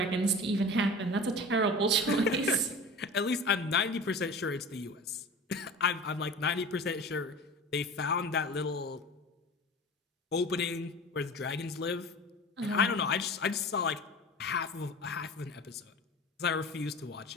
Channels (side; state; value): both; normal; correlation 0.37